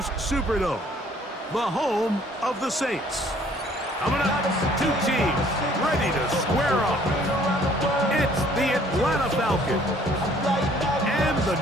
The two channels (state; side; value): normal; both; correlation 0.59